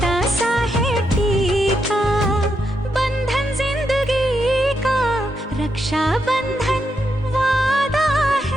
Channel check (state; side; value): normal; both; correlation 0.82